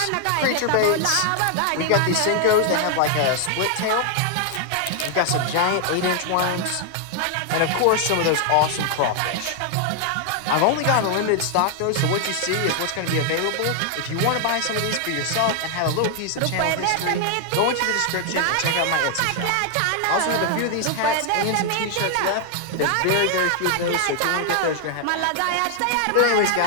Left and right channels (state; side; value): different; both; correlation 0.00